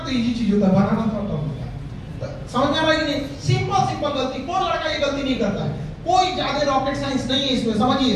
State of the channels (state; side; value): identical; both; correlation 1.00